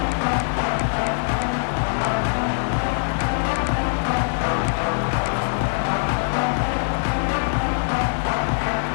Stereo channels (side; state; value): right; silent; 60 dB below the other